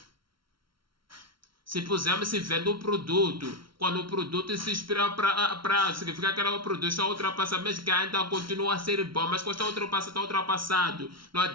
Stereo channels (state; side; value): late; left; 0.74 ms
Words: Se pusermos se vende um produto, quando o produto se expira para significa que o produto está ultrapassado, mesmo que ainda continua a ser bom, mas quando está ultrapassado, não